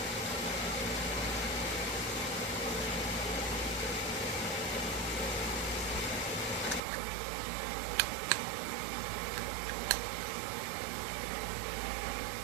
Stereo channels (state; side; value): drops out; left; at 6.8 s